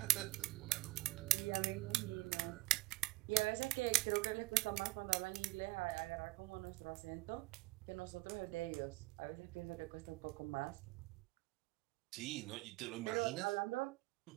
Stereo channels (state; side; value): quieter; left; 22.1 dB